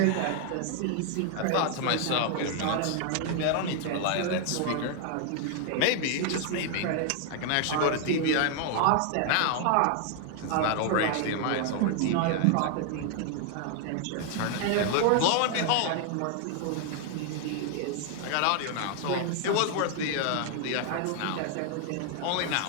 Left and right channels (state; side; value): different; both; correlation 0.00